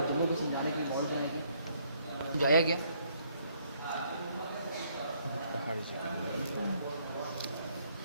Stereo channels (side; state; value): both; inverted; correlation -0.68